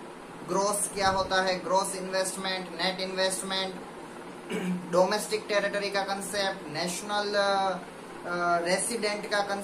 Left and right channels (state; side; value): identical; both; correlation 1.00